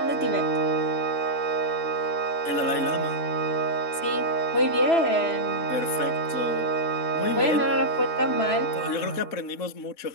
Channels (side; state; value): right; late; 3.0 ms